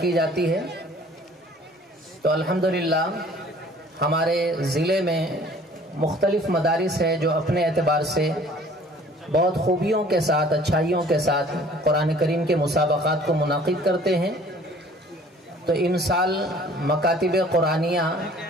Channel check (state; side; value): normal; both; correlation 0.52